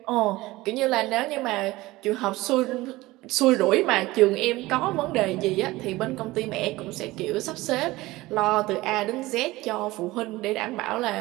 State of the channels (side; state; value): left; quieter; 19.3 dB